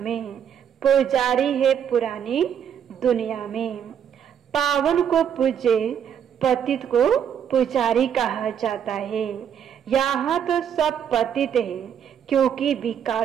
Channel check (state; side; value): quieter; left; 8.6 dB